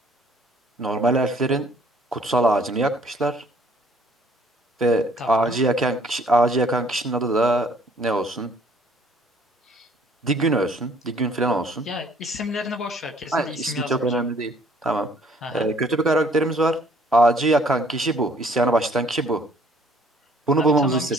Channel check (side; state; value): both; normal; correlation 0.60